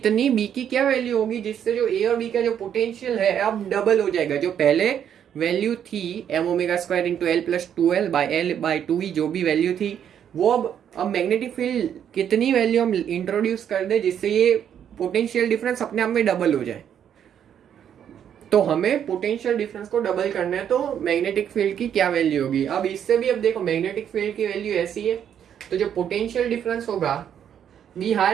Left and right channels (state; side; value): quieter; left; 9.1 dB